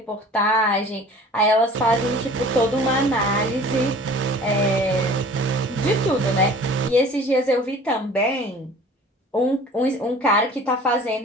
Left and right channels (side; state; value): both; normal; correlation 0.46